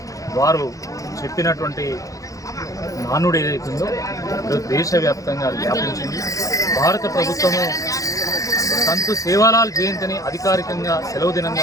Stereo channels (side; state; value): right; late; 0.16 ms